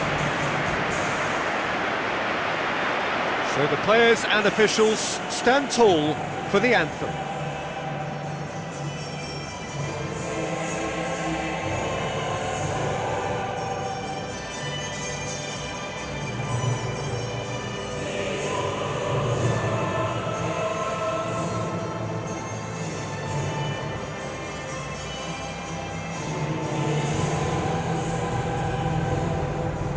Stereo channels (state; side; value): identical; both; correlation 1.00